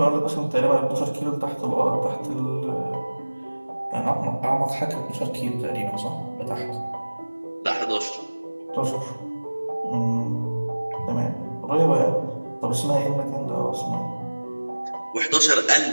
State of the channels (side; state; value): both; inverted; correlation -1.00